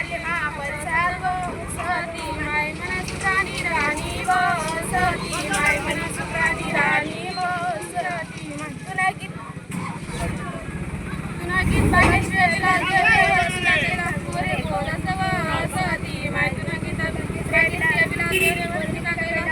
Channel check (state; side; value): identical; both; correlation 1.00